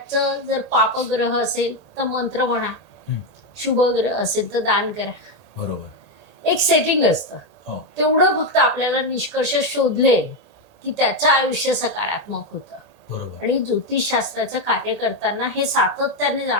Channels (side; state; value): right; late; 1.8 ms